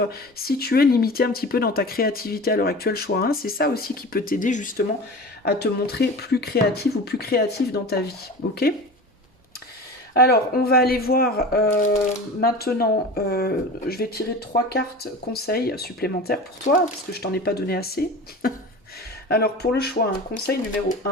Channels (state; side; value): normal; both; correlation 0.34